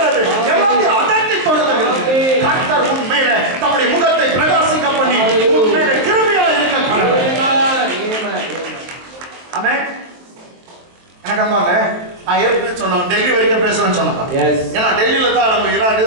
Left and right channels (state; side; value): late; left; 23 ms